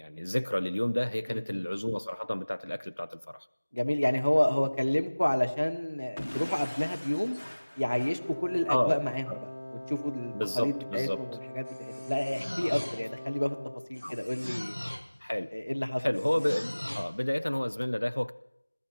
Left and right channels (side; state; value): both; inverted; correlation -1.00